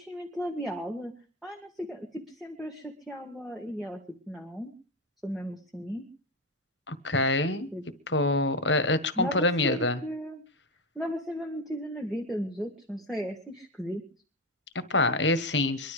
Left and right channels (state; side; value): normal; both; correlation 0.11